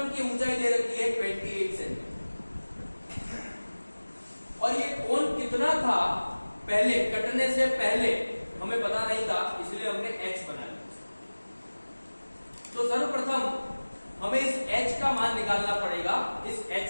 की ऊंचाई दे रखी है 28 सेंटीमीटर। और ये कोण कितना था पहले, कटने से पहले हमें पता नहीं था, इसलिए हमने H बना लिया। तो सर्वप्रथम हमें इस H का मान निकालना पड़ेगा, इस H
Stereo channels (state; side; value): inverted; both; correlation -1.00